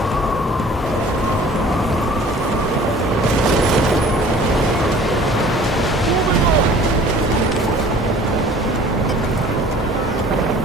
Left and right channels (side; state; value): both; normal; correlation 0.49